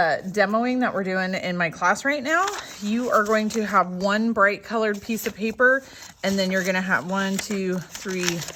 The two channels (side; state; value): both; identical; correlation 1.00